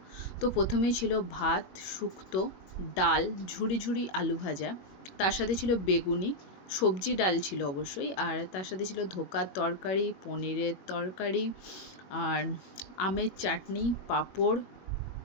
তো প্রথমেই ছিল ভাত, শুক্তো, ডাল, ঝুরি ঝুরি আলু ভাজা, তার সাথে ছিল বেগুনি, সবজি ডাল ছিল অবশ্যই, আর তার সাথে ছিল ধোকার তরকারি, পনিরের তরকারি, আর আমের চাটনি, পাঁপড়,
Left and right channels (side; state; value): right; late; 21 ms